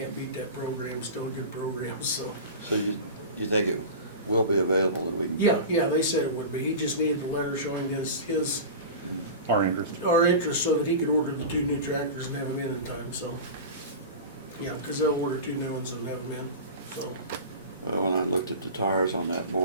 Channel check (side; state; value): both; inverted; correlation -0.31